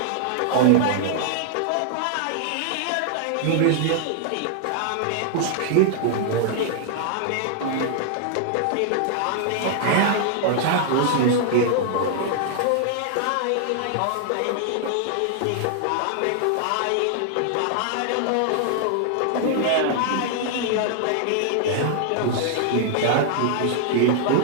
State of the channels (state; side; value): different; both; correlation -0.01